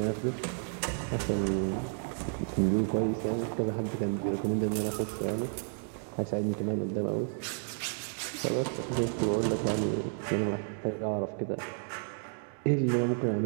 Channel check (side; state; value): left; silent; 57 dB below the other